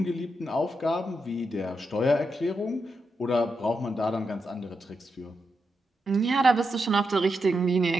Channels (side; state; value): both; normal; correlation 0.85